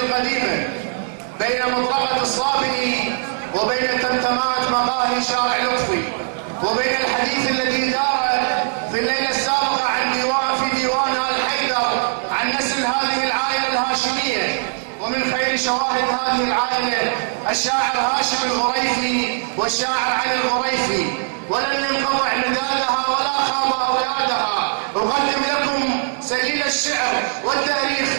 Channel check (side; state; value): left; silent; digital silence